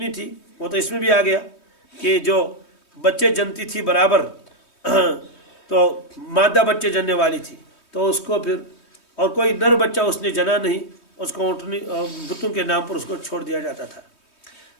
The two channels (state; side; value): late; right; 3.2 ms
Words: تھی، وہ تو اس میں بھی آ گیا کہ جو بچے جنتی تھی برابر، تو مادہ بچے جننے والی تھی، تو اس کو پھر اور کوئی نر بچہ اس نے جنا نہیں، اس کو اونٹنی بتوں کے نام پر اس کو چھوڑ دیا جاتا تھا۔